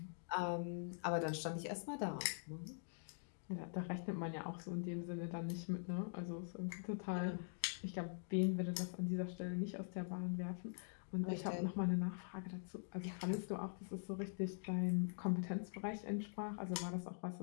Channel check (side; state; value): right; silent; digital silence